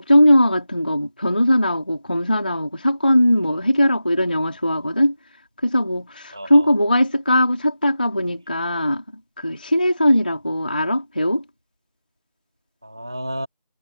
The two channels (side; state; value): both; inverted; correlation -0.92